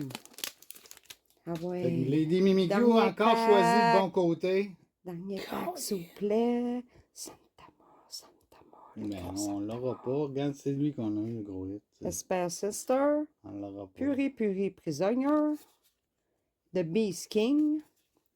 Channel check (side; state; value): both; identical; correlation 1.00